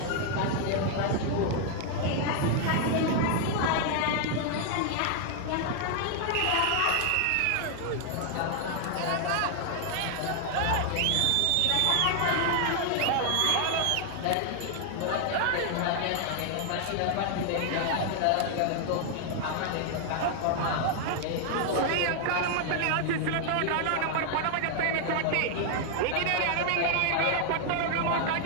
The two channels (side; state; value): both; different; correlation 0.00